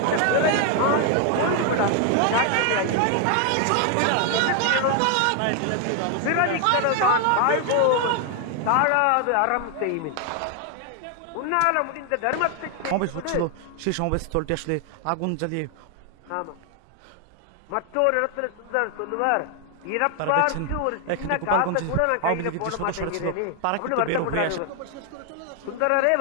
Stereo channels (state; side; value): different; both; correlation 0.01